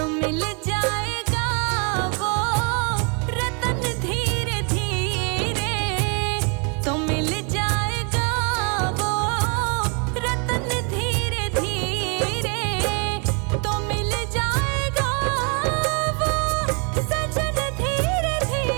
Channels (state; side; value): quieter; left; 35.9 dB